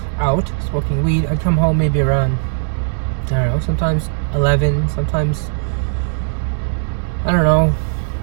out smoking weed. I'd come home maybe around, I don't know, sometimes 11, sometimes, I don't know,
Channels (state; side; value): silent; left; digital silence